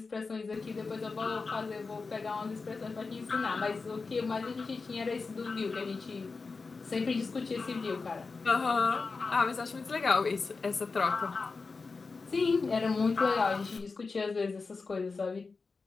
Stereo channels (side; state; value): right; quieter; 4.3 dB